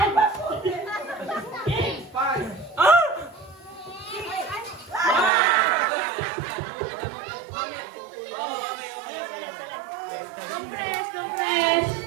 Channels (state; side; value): drops out; left; at 5.3 s